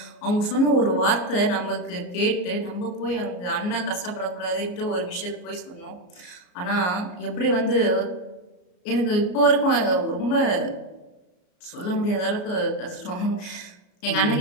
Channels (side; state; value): right; late; 34 ms